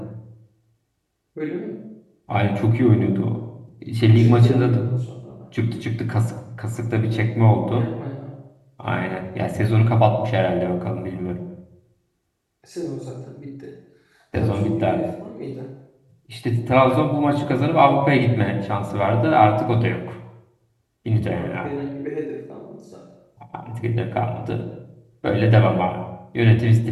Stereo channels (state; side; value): identical; both; correlation 1.00